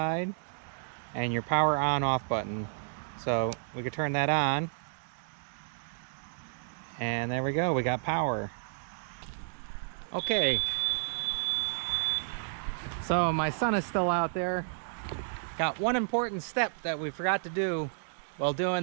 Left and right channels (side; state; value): left; silent; digital silence